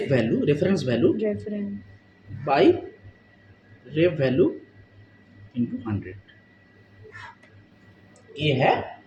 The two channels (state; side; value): identical; both; correlation 1.00